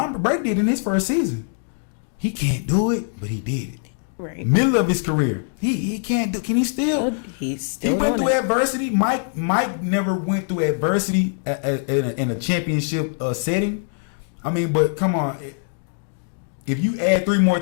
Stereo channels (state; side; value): silent; right; 62 dB below the other